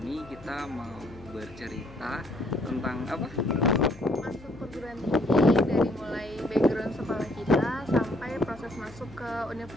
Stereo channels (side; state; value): left; noise; hum, 19 dB below the sound